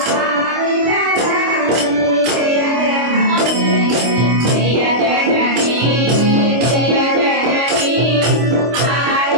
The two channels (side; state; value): left; late; 25 ms